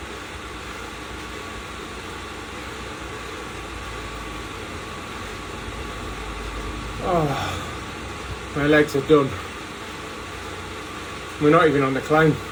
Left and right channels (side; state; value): both; identical; correlation 1.00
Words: Oh, my legs are done. We're not even on the climb.